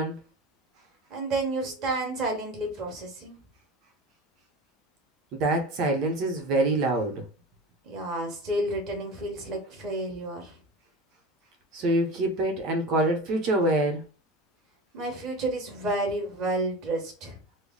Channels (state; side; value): normal; both; correlation 0.31